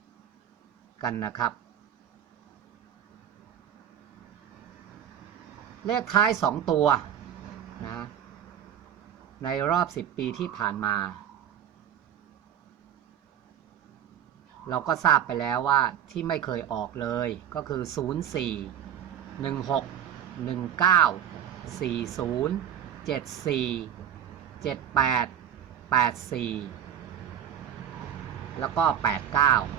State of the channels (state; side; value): quieter; left; 9.6 dB